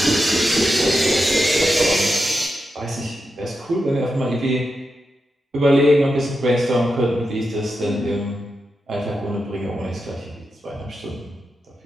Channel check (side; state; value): both; normal; correlation 0.88